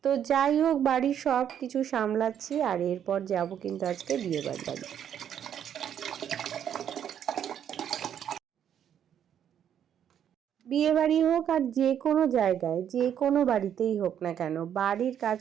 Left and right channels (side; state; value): left; quieter; 9.4 dB